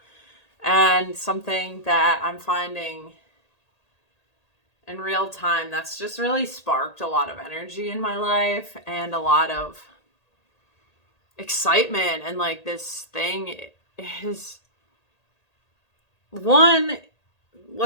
And something that I'm finding in real time that's just really sparked a lot of energy in my life and a lot of excitement. And like, this thing is one,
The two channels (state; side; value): late; right; 1.8 ms